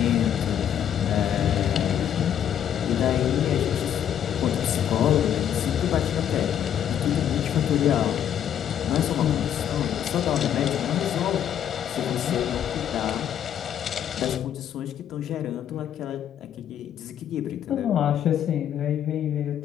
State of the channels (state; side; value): quieter; right; 9.7 dB